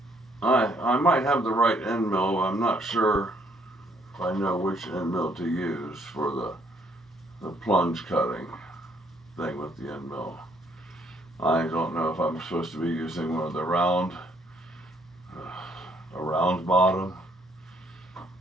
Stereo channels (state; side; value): normal; both; correlation 0.67